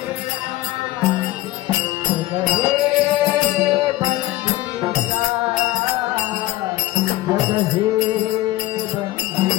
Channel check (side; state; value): right; quieter; 16.6 dB